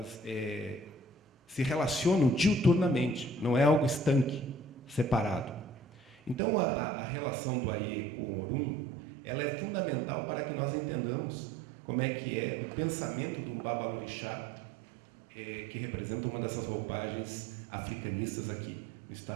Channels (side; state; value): left; drops out; at 6.4 s